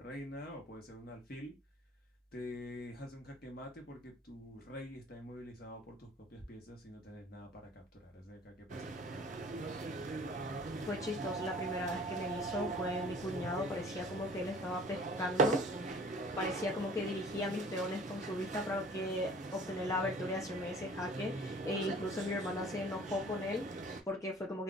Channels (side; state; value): both; normal; correlation 0.50